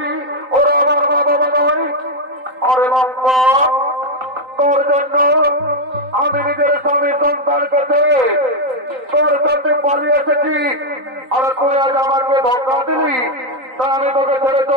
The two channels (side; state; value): left; late; 3.9 ms